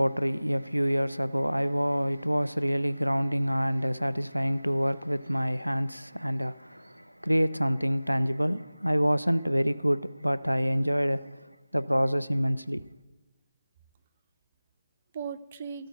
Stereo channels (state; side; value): inverted; both; correlation -0.99